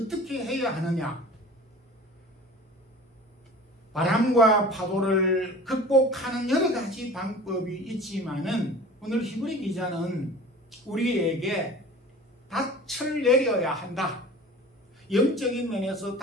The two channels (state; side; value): normal; both; correlation 0.41